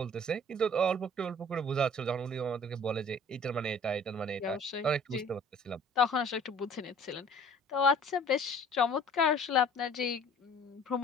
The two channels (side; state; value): both; normal; correlation 0.50